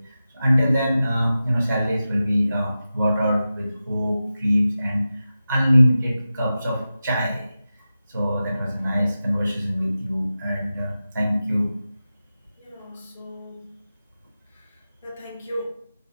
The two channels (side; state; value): both; inverted; correlation -0.93